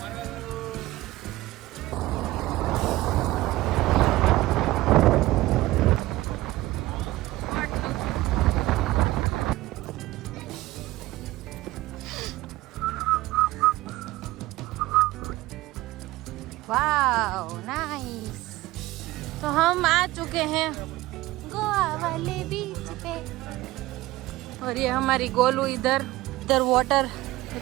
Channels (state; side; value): quieter; left; 17.8 dB